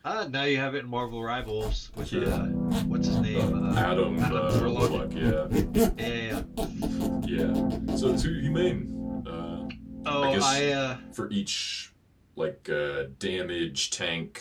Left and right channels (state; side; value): identical; both; correlation 1.00